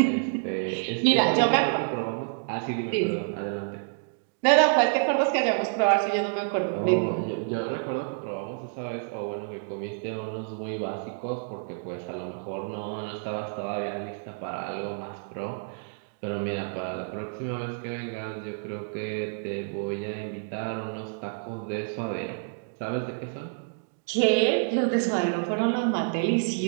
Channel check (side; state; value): left; silent; digital silence